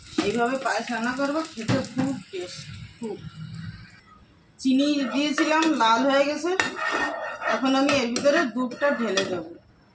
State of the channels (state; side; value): identical; both; correlation 1.00